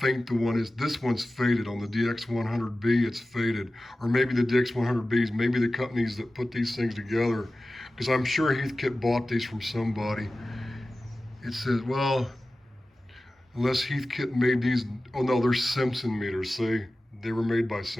the one is. This one's faded. On the DX100B, it's faded. Or maybe the DX100Bs, maybe the companies that put these things together, because I'm sure Heathkit bought these from somebody. It says, well, unless Heathkit made these, oh no, they're Simpson meters, see? They were made by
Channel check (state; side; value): normal; both; correlation 0.96